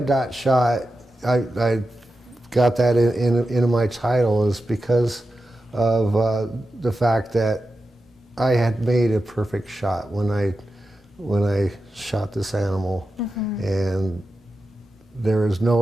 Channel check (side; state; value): both; normal; correlation 0.91